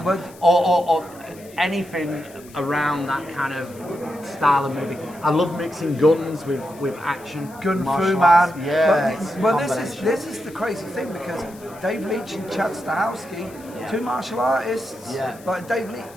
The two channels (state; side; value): noise; left; hiss, 23 dB below the sound